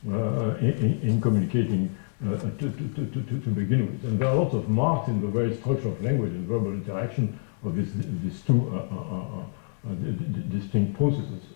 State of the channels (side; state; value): right; silent; digital silence